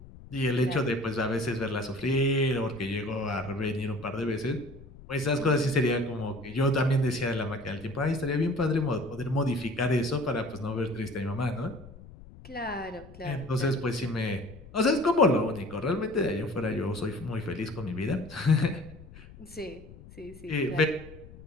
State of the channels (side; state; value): left; noise; rumble, 18 dB below the sound